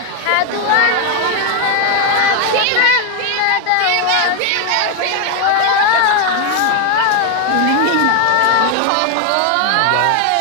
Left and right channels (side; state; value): both; different; correlation 0.01